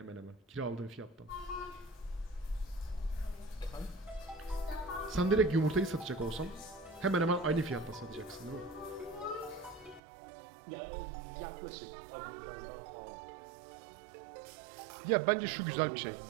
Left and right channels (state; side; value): drops out; left; at 10.0 s